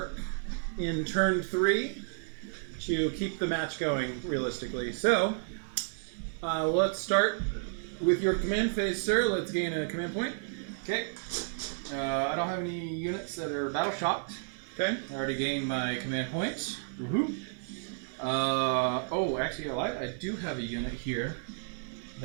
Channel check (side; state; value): left; silent; 57 dB below the other